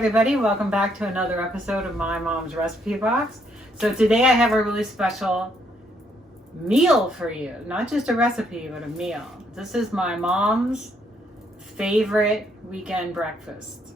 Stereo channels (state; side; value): normal; both; correlation 0.72